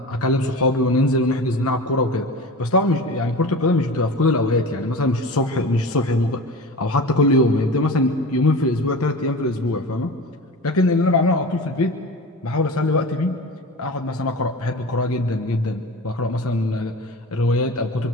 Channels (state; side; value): normal; both; correlation 0.33